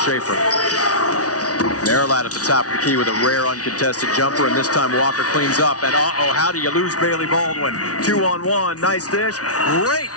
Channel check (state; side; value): late; right; 0.68 ms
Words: Marilot at the top of the key with a rare uncontested jumper, and this time Walker cleans up. And how do you lose Bailey Baldwin? 2-on-1, nice dish. Great